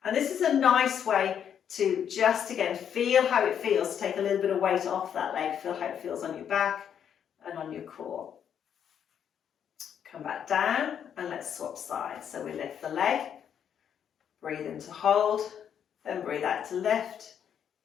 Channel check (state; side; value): quieter; right; 8.6 dB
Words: And this is a nice way to just, again, feel how it feels, take a little bit of weight off that leg, feel how it feels on your back and on your core. Come back down and let's swap sides. So we lift the leg, breathe in to hold, then breathe out to lift,